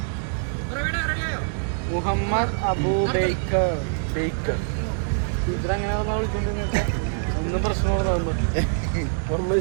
മുഹമ്മദ് അബൂബൈക്കർ ഇതങ്ങനെ ഒന്നും പ്രശ്നമോട്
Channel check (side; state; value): left; silent; digital silence